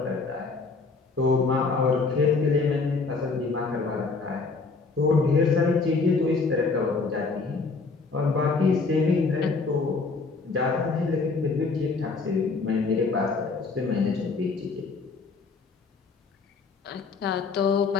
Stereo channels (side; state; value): right; quieter; 4.3 dB